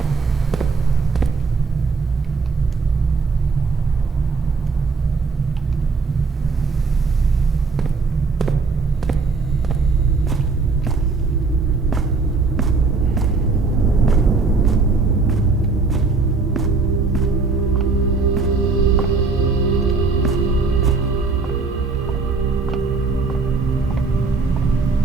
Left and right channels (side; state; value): left; quieter; 4.2 dB